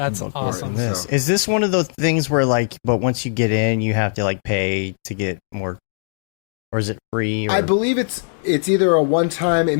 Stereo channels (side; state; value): right; silent; digital silence